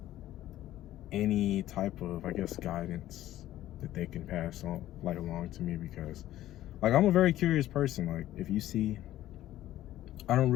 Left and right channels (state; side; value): quieter; right; 13.8 dB